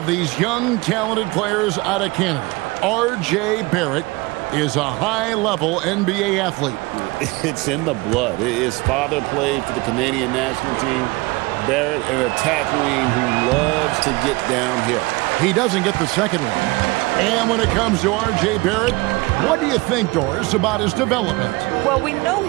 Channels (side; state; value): left; quieter; 23.4 dB